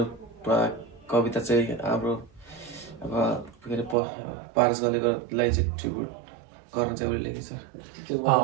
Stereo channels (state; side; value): drops out; left; at 4.0 s